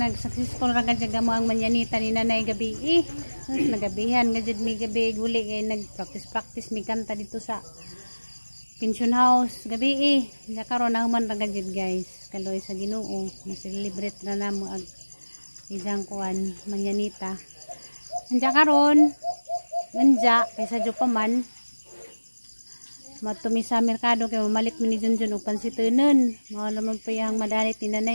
nag-successful ra gad mo ang manyanita ni nanay gabi. Nagabihan gad mi gabi guli kay nag-practice mi kanta dito sa pension house gabi. Ya karon na human ra gad guys. Kaloy sa Ginoo, na-celebrate na namo ang ijang kuan manyanita. Anja karon nanja kaysa jo pa man matumi sa merkado kay mamalit mi ni Junjun og pansitunon. Mao naman pa yang madalit ni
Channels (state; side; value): inverted; both; correlation -1.00